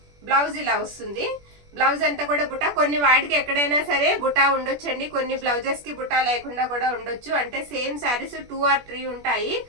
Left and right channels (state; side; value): late; left; 21 ms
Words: బ్లౌజ్ ఇలా వస్తుంది. బ్లౌజ్ అంతా కూడా బుటా. కొన్ని వాటికి ఎక్కడైనా సరే బుటా ఉండొచ్చండి, కొన్ని బ్లౌజెస్ కి బుటా లేకుండా కూడా ఉండొచ్చు. అంటే సేమ్ శారీస్ 2 or 3 ఉంటాయి.